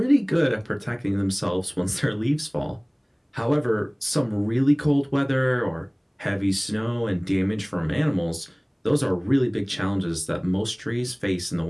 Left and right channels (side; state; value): both; identical; correlation 1.00